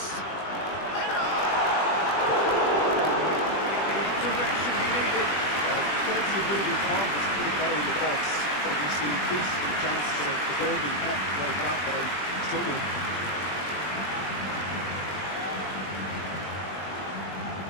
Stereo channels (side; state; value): right; late; 20 ms